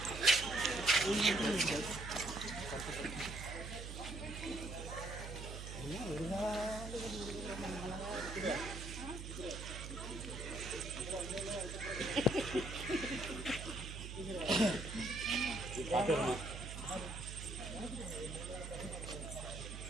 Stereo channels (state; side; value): noise; right; hum, 8 dB below the sound